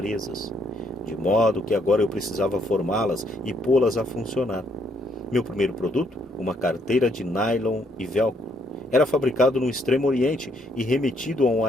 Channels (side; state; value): both; normal; correlation 0.71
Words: de modo que agora eu precisava formá-las e pô-las a funcionar. Meu primeiro produto, uma carteira de nylon e velcro, era fabricado no Extremo Oriente e remetido a um